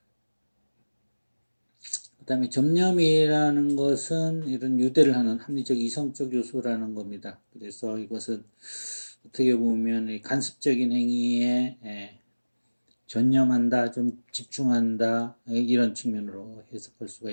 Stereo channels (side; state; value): both; inverted; correlation -1.00